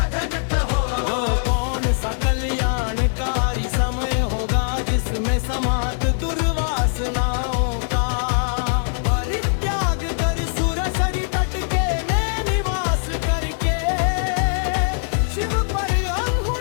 हो वो कौन सा कल्याणकारी समय होगा जिसमें समाप्त दुर्वासनाओं का परित्याग कर सुरसरी तट के में निवास करके शिव पर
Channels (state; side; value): silent; right; digital silence